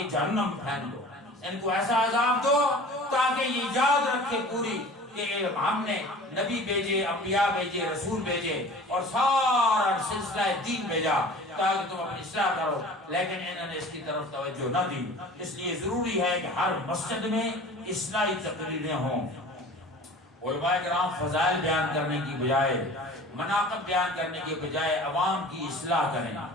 جہنم پھینک دو، ان کو ایسا عذاب دو تاکہ یہ یاد رکھے پوری کہ ہم نے نبی بھیجے، انبیاء بھیجے، رسول بھیجے، اور سارا سلسلہ دین بھیجا تاکہ تم اپنی اصلاح کرو، لیکن انہوں نے اس کی طرف توجہ نہ دی۔ اس لیے ضروری ہے کہ ہر مسجد میں اصلاحی تقریریں ہوں، علماء کرام فضائل بیان کرنے کی بجائے، مناقب بیان کرنے کی بجائے عوام کی اصلاح کریں،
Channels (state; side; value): normal; both; correlation 0.42